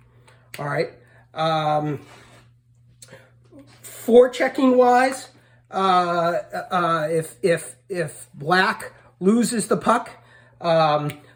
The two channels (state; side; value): identical; both; correlation 1.00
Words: All right. Forechecking wise, if black loses the puck,